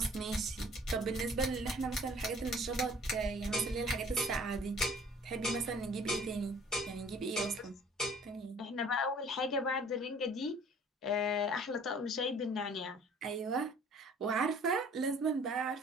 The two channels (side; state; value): both; normal; correlation 0.52